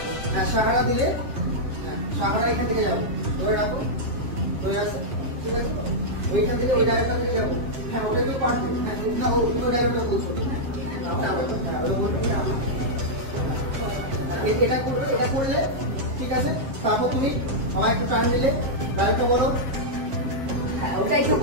হ্যাঁ, সাহারা দিলে, হ্যাঁ সাহারা এখান থেকে যাবো, ধরে রাখো, হয়ে আসো, ঠিক আছে? ওইখান থেকে ওই ডায়লগটা থেকে যাবো, হ্যাঁ ওটা তো পারবো, হ্যাঁ না ওই ডায়লগটা বলছো, হ্যাঁ ওটা বলতে এটা করবে, এটা করলে, ঠিক আছে? তারপর তুমি আমায় একটু টান দিলে, ডায়লগটা বলো। হ্যাঁ ওটাই তো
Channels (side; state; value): left; late; 7.6 ms